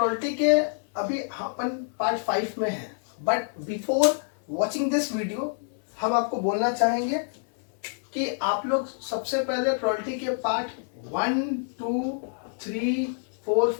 के अभी अपन पार्ट 5 में है, but before watching this video हम आपको बोलना चाहेंगे कि आप लोग सबसे पहले प्रोबेबिलिटी के पार्ट 1, 2, 3,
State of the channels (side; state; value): right; silent; 60 dB below the other